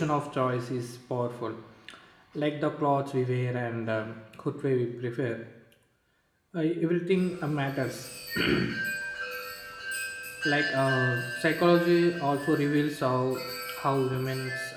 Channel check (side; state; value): both; identical; correlation 1.00